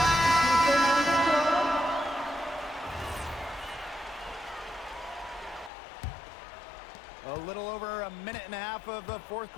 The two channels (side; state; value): right; drops out; at 5.7 s